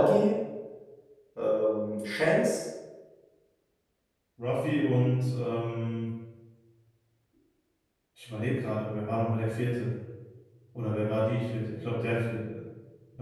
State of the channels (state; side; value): identical; both; correlation 1.00